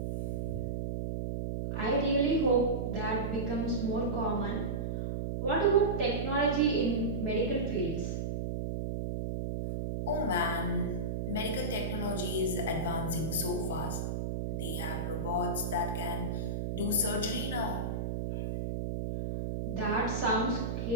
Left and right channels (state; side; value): noise; right; hum, 1 dB below the sound